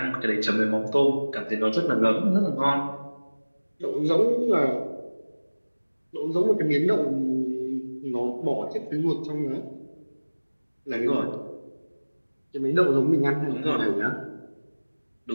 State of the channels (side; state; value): both; inverted; correlation -1.00